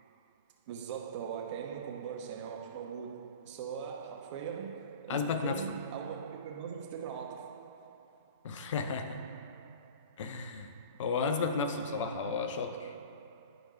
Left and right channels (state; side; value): inverted; both; correlation -0.36